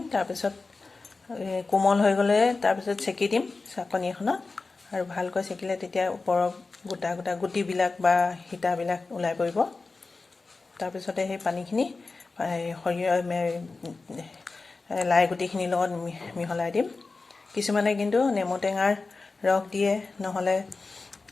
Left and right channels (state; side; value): quieter; right; 3.8 dB